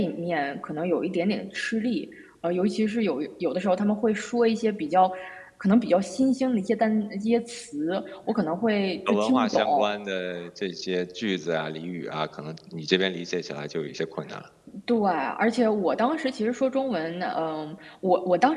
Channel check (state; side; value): identical; both; correlation 1.00